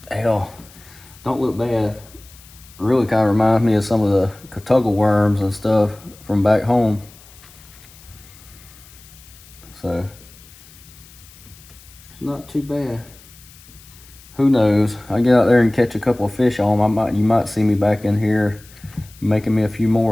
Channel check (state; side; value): noise; left; hiss, 23 dB below the sound